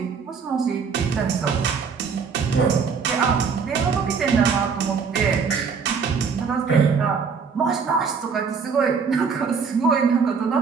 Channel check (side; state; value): left; quieter; 5.7 dB